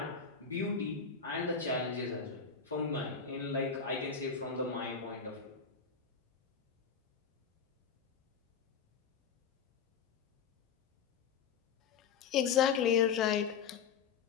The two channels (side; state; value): right; quieter; 6.4 dB